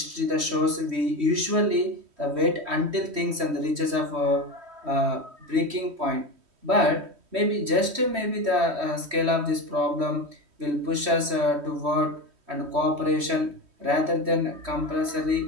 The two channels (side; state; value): left; late; 3.1 ms